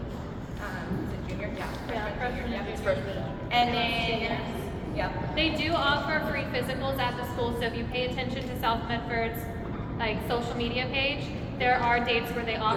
Is it junior? Yeah. Freshman, Junior, It's freshman. And then, yeah. They do offer free physicals at the school, so if you pay attention to South Medford's like social media page, there are dates where they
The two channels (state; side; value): identical; both; correlation 1.00